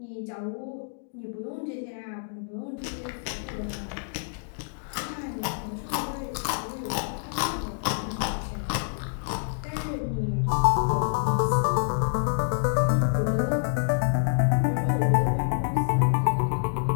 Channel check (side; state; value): right; silent; digital silence